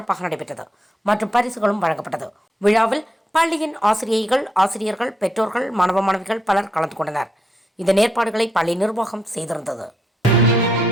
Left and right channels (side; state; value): both; normal; correlation 0.80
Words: நடைபெற்றது மற்றும் பரிசுகளும் வழங்கப்பட்டது. விழாவில் பள்ளியின் ஆசிரியைகள், ஆசிரியர்கள், பெற்றோர்கள், மாணவ மாணவிகள் பலர் கலந்து கொண்டனர். இந்த ஏற்பாடுகளை பள்ளி நிர்வாகம் செய்திருந்தது.